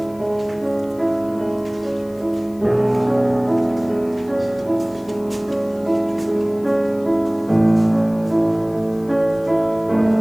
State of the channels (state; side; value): noise; left; hiss, 27 dB below the sound